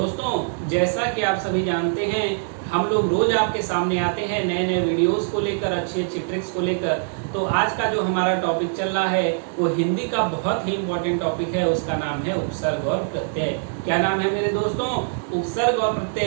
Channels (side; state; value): left; silent; digital silence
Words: जैसा कि आप सभी जानते हैं, हम लोग रोज आपके सामने आते हैं नए नए वीडियोस को लेकर, अच्छी अच्छी ट्रिक्स को लेकर। तो आज का जो हमारा टॉपिक चल रहा है वो हिंदी का बहुत ही इम्पोर्टेंट टॉपिक है। उसका नाम है उपसर्ग और प्रत्यय। क्या नाम है मेरे दोस्तों? उपसर्ग और